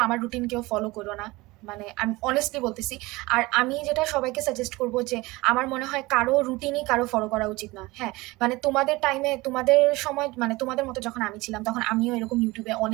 আমার রুটিন কেউ ফলো করো না, মানে আমি অনেস্টলি বলতেছি। আর আমি যেটা সবাইকে সাজেস্ট করবো যে আমার মনে হয় কারো রুটিনই কারো ফলো করা উচিত না। হ্যাঁ, মানে তোমাদের টাইমে, তোমাদের সময়, মানে তোমাদের মতো যখন আমি ছিলাম তখন আমিও এরকম ইউটিউবে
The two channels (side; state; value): left; quieter; 21.4 dB